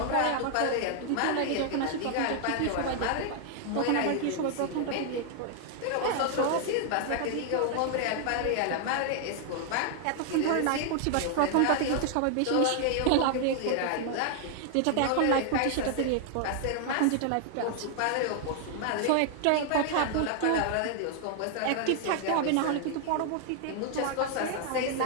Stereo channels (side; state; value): both; different; correlation 0.00